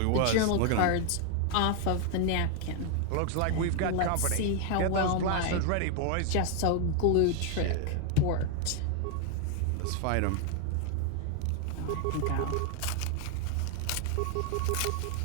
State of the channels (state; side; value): different; both; correlation 0.00